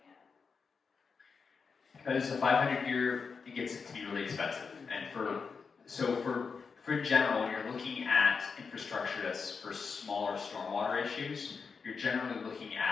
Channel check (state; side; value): quieter; right; 5.4 dB